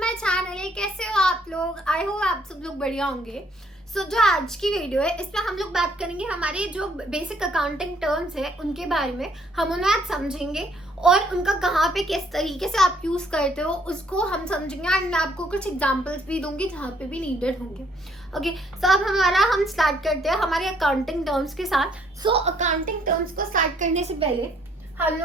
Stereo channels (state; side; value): normal; both; correlation 0.66